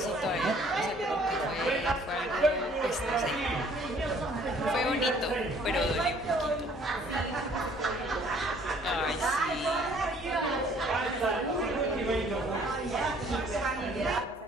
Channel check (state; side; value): normal; both; correlation 0.58